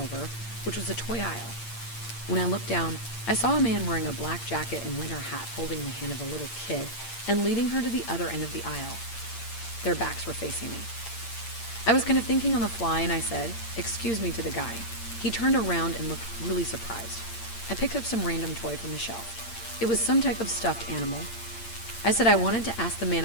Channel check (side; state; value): right; late; 8.7 ms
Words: which was a toy aisle. When I looked down, I saw a man wearing a black jacket and winter hat holding the hand of a little kid and leading her to the other end of the aisle. Their backs were facing me. I was kind of thinking on the fly, and I said, "Excuse me," to the guy. He turned around and looked really surprised. I picked up some random toy from the shelf. It was some type of stuffed animal. I said I wanted to ask the man